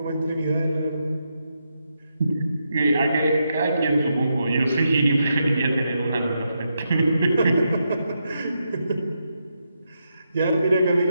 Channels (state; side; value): inverted; both; correlation -0.83